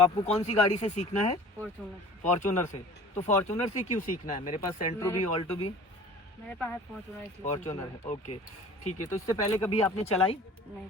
कौन सी गाड़ी से सीखना है? फॉर्च्यूनर। फॉर्च्यूनर से। तो फॉर्च्यूनर से क्यों सीखना है? मेरे पास सेंट्रो भी, ऑल्टो भी। मेरे पास है फॉर्च्यूनर। फॉर्च्यूनर है, ओके ठीक है। तो इससे पहले कभी आपने चलाई?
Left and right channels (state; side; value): normal; both; correlation 0.44